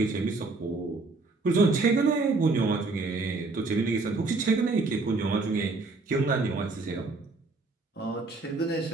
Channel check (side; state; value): left; quieter; 3.6 dB